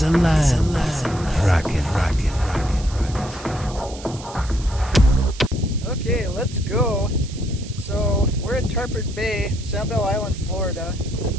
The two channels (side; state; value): right; noise; hiss, 17 dB below the sound